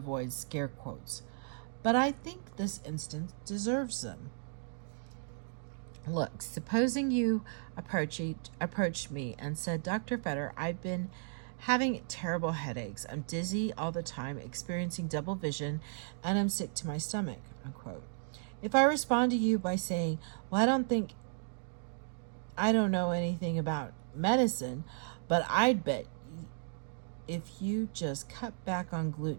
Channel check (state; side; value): silent; left; digital silence